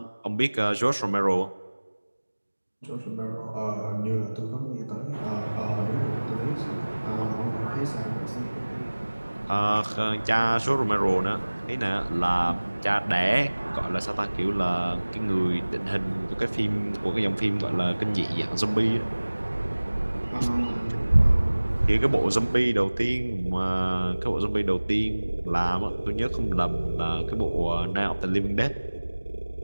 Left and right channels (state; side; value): inverted; both; correlation -1.00